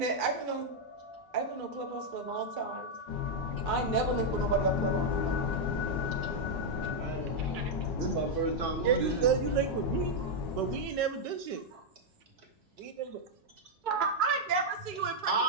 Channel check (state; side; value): normal; both; correlation -0.01